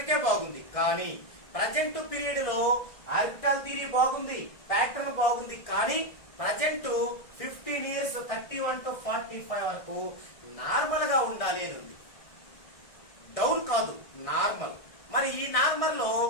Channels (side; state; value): right; late; 1.6 ms